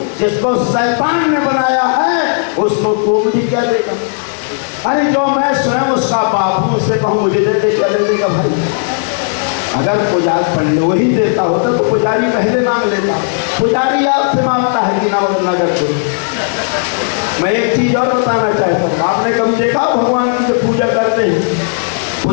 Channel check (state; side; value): silent; right; digital silence